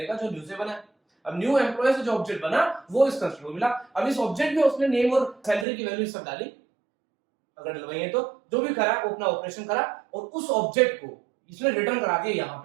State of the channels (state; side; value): drops out; left; at 5.7 s